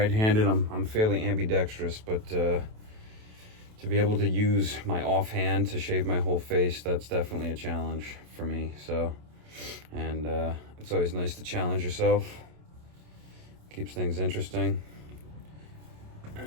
I'm fairly ambidextrous, but to be able to use my offhand to shave my whole face, that's definitely a challenge for me. So, and it's always nice to challenge yourself. Keeps things interesting.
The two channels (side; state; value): left; late; 28 ms